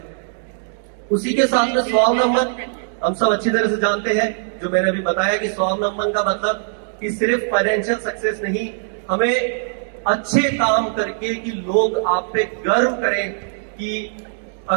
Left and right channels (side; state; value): left; silent; digital silence